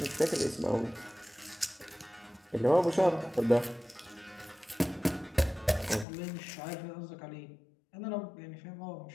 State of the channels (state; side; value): drops out; right; at 6.1 s